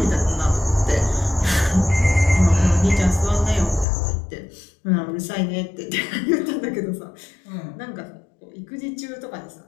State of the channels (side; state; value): right; drops out; at 3.9 s